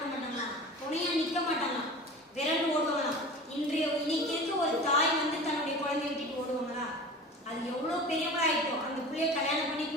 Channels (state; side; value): normal; both; correlation 0.36